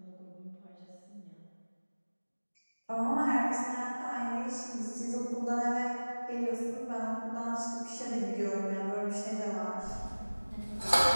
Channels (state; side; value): inverted; both; correlation -1.00